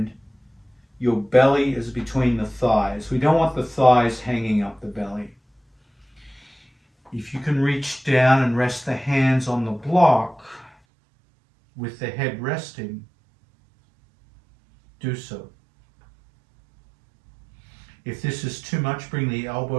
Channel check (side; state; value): left; drops out; at 10.7 s